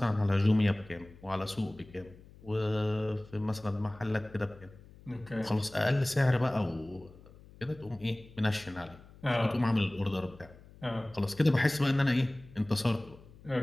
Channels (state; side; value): noise; left; hum, 22 dB below the sound